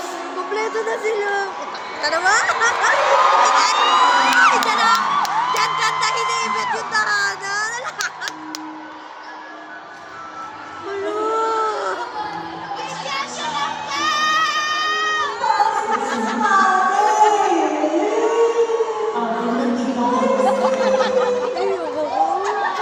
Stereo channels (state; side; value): identical; both; correlation 1.00